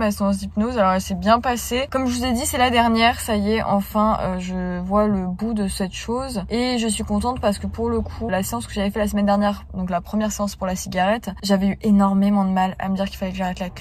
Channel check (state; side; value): identical; both; correlation 1.00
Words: séance d'hypnose. Alors, elle s'est bien passée. Comme je vous ai dit, c'est la dernière. Ça y est, enfin, je vois le bout de cette chose. Et je suis contente parce que pour le coup, la séance que j'avais fait la semaine dernière, donc la première séance pour la cigarette, j'avais eu énormément de mal à me dire qu'il fallait que j'arrête la